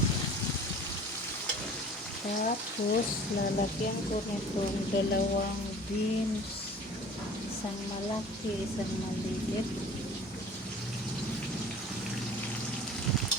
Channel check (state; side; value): normal; both; correlation 0.45